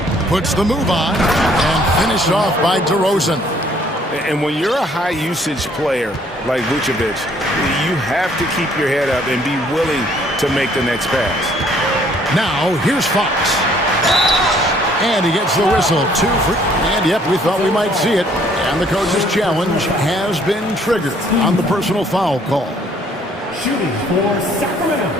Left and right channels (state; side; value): normal; both; correlation 0.62